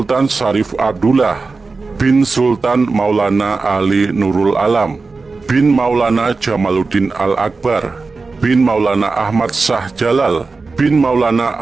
Syarif Abdullah bin Sultan Maulana Ali Nurul Alam bin Maulana Jamaluddin Al-Akbar bin Maulana Ahmad Shah Jalal bin Maulana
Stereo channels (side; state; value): left; quieter; 4.1 dB